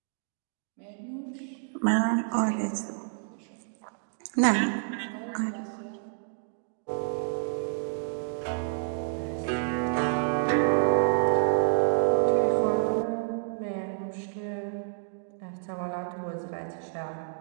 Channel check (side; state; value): left; silent; digital silence